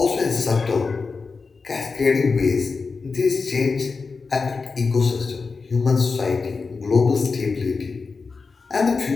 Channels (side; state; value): right; quieter; 4.5 dB